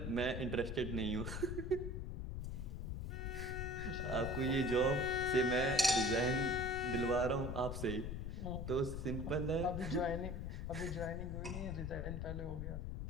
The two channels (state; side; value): noise; left; rumble, 4 dB below the sound